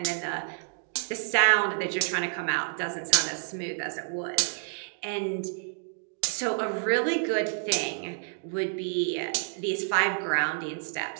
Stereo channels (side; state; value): left; silent; digital silence